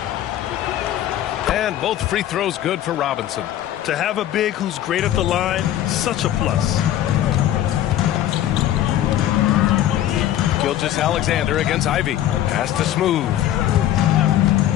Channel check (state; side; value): quieter; right; 12.3 dB